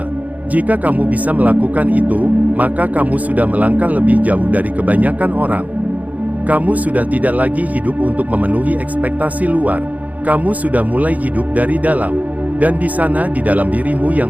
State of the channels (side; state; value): left; late; 0.075 ms